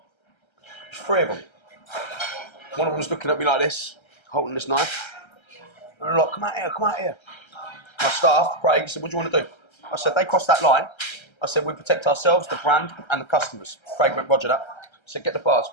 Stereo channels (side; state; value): right; late; 1.3 ms